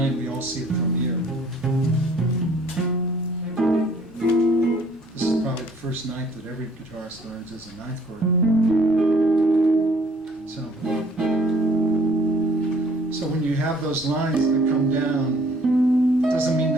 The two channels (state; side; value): normal; both; correlation 0.58